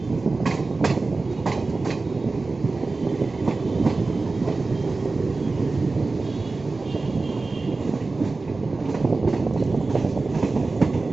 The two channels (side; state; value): left; quieter; 3.6 dB